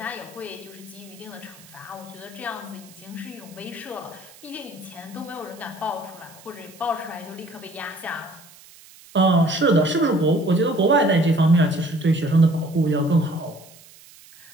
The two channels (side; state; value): right; noise; hiss, 22 dB below the sound